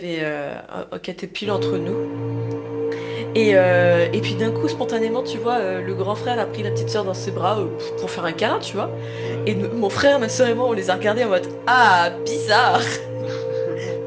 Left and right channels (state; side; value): identical; both; correlation 1.00